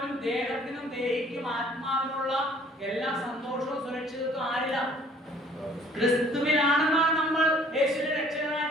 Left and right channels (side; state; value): both; normal; correlation 0.57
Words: ദേഹത്തിനും ദേഹിക്കും ആത്മാവിനുള്ള എല്ലാ സന്തോഷവും സുരക്ഷിതത്വം ആരില്ല? ക്രിസ്തുവിലാണെന്നാണ് നമ്മൾ യേശുവിനെ